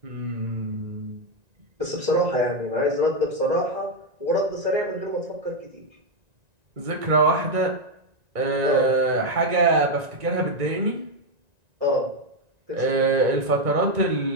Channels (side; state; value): left; late; 1.9 ms